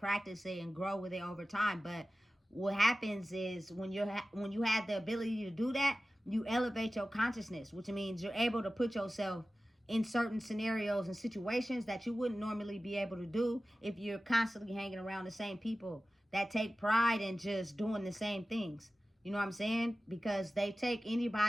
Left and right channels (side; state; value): both; normal; correlation 0.95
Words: it and grow with it over time. But what happens is when you have the ability to do that, you elevate your consciousness, which means you're able to put yourself in certain scenarios and situations that you wouldn't normally be able to do if you're constantly hanging around the same people that take pride in just doing the same things. You know what I'm saying? Because they take